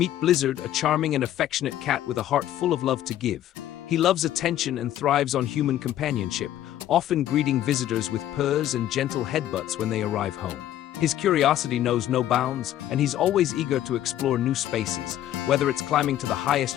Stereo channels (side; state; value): right; quieter; 12.4 dB